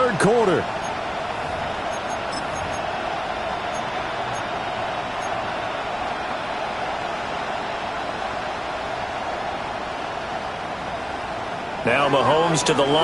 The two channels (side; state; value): both; identical; correlation 1.00